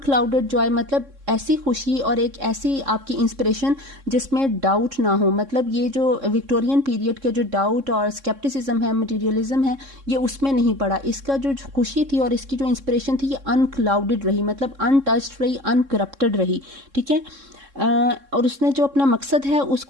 joy मतलब ऐसी खुशी और एक ऐसी आपकी इंस्पिरेशन जिसमें डाउट ना हो, मतलब ये जो विक्टोरियन पीरियड के जो डाउट और स्केप्टिसिज्म है, मटेरियलिज्म है, ये उसमें नहीं पड़ा। इसका जो खुशी थी और इसकी जो इंस्पिरेशन थी ये अनक्लाउडेड रही, मतलब अनटच्ड रही, अनकरप्टेड रही, ठीक है। और उसने जो अपना मकसद है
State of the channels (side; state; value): left; late; 3.6 ms